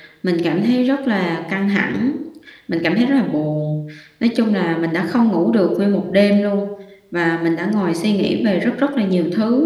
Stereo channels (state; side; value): identical; both; correlation 1.00